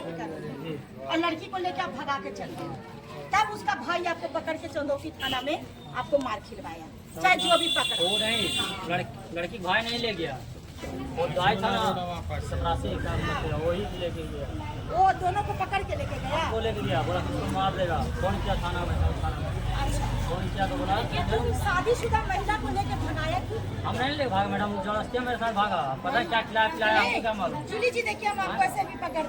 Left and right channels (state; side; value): identical; both; correlation 1.00